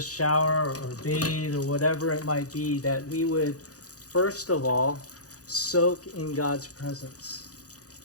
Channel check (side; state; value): right; late; 0.67 ms